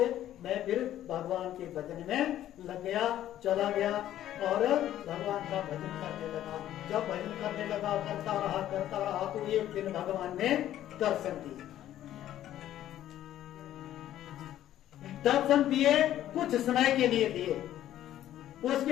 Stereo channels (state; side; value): quieter; right; 12.4 dB